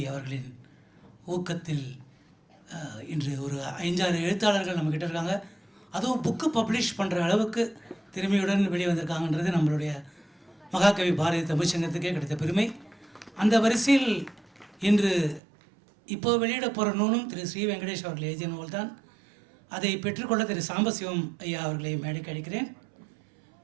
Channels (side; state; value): left; drops out; at 15.4 s